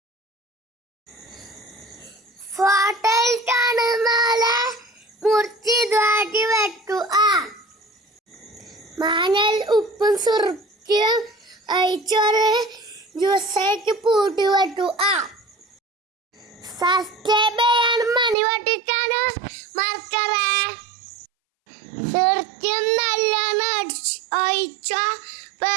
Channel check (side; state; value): left; drops out; at 18.4 s